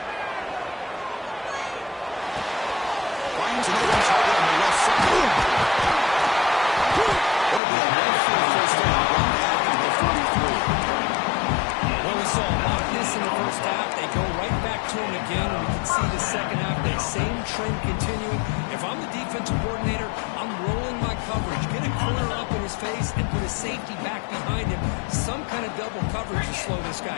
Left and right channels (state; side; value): drops out; right; at 7.6 s